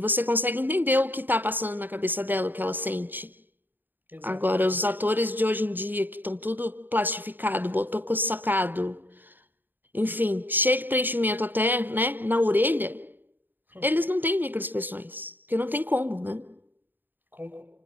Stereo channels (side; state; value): left; late; 0.092 ms